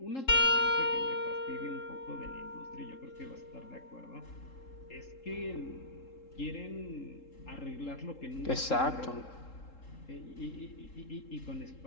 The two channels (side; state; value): right; late; 3.7 ms